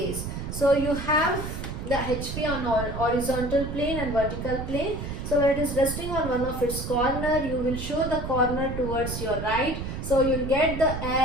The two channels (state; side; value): noise; right; rumble, 6 dB below the sound